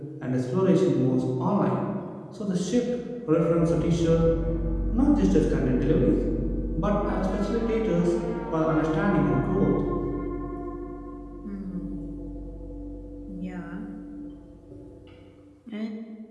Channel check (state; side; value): identical; both; correlation 1.00